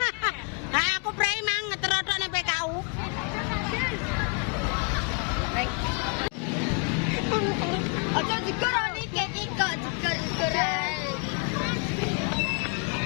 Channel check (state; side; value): quieter; right; 35.2 dB